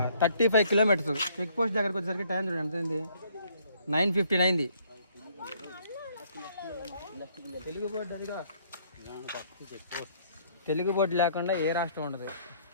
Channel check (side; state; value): both; inverted; correlation -0.64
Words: 35 కిలోమీటర్స్. చెక్ పోస్ట్ దగ్గరకు వచ్చేసరికి టైం చూడండి ఎంత అయింది, 9:15 అయింది. తెలుగు బోర్డు అదిగా, తెలుగు బోర్డు లేకుండా ఏ రాష్ట్రం ఉండదు.